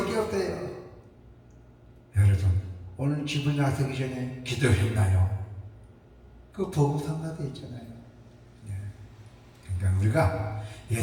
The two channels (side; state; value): both; identical; correlation 1.00